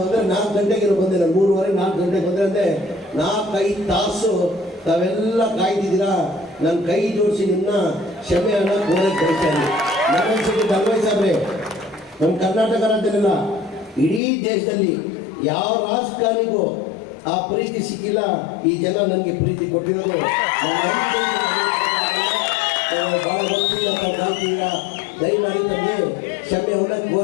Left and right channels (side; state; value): right; drops out; at 14.2 s